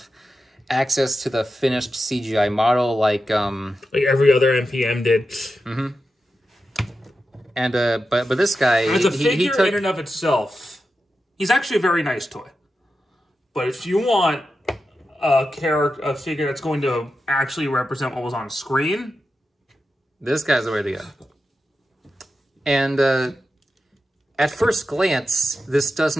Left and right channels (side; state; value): both; normal; correlation 0.90